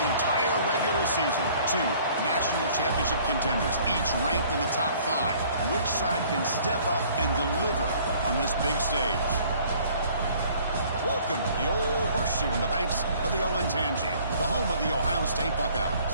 entire regular season. Two national championship contenders, each ranked in the top 5. Which side can step up and deliver on this big stage? Welcome to the old horseshoe in the banks of the Olentangy, the home of the Ohio State Buckeyes.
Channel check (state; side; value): inverted; both; correlation -0.55